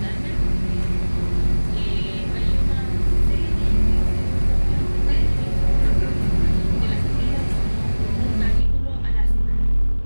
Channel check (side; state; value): both; inverted; correlation -1.00